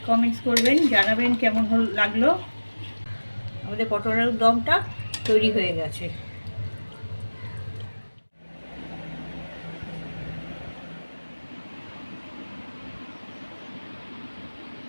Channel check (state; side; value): inverted; both; correlation -1.00